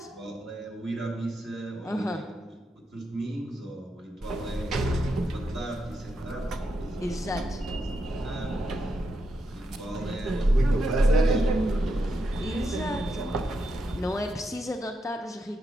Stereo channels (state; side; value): normal; both; correlation 0.84